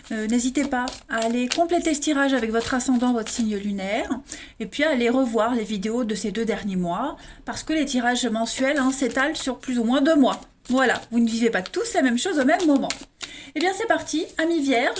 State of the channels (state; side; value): identical; both; correlation 1.00